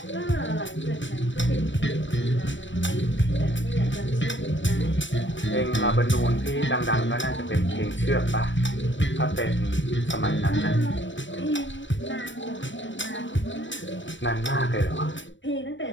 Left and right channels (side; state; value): right; late; 0.54 ms